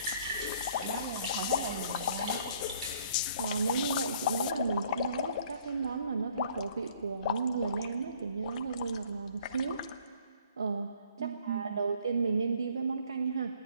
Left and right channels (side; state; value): both; inverted; correlation -0.59